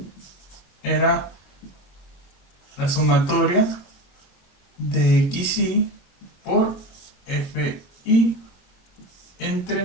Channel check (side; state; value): right; late; 22 ms